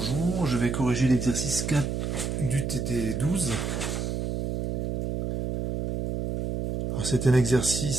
je vais corriger l'exercice 4 du TD12. C'est un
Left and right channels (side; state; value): right; noise; hum, 2 dB below the sound